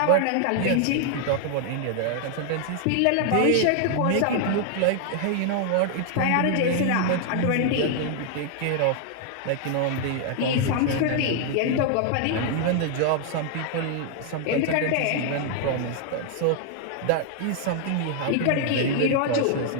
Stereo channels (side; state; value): both; different; correlation 0.00